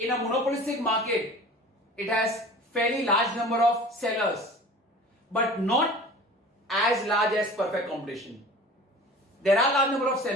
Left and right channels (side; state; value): both; normal; correlation 0.41